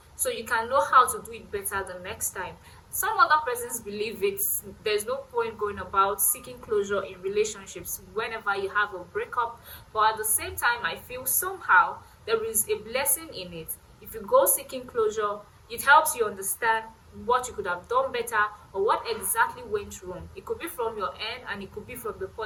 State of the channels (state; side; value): identical; both; correlation 1.00